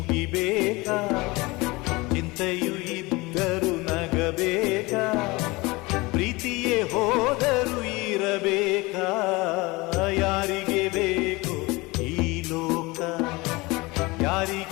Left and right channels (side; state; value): right; quieter; 23.2 dB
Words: ಚಿಂತೆಯು ಇದ್ದರು ನಗಬೇಕಾ, ಪ್ರೀತಿಯೇ ಹೋದರು ಇರಬೇಕಾ. ಯಾರಿಗೆ ಬೇಕೋ ಈ ಲೋಕ,